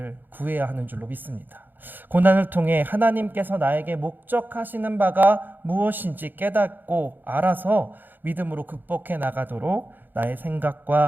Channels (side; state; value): left; late; 0.089 ms